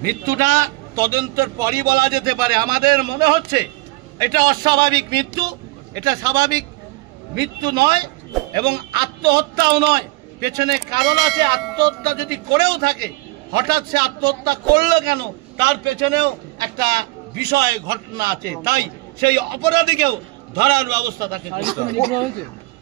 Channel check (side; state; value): left; quieter; 22.4 dB